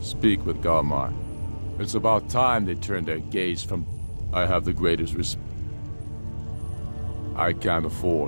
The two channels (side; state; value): both; inverted; correlation -1.00